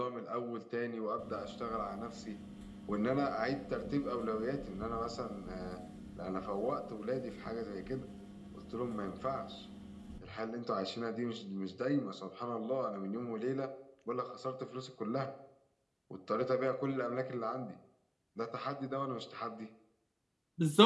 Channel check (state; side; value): identical; both; correlation 1.00